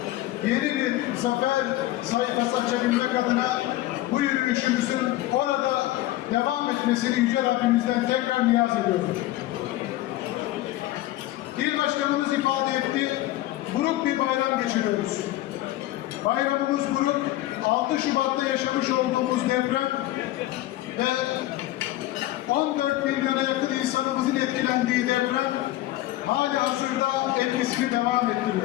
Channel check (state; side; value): quieter; right; 15.9 dB